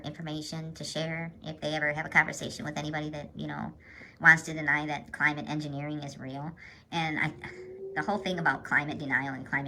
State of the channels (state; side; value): identical; both; correlation 1.00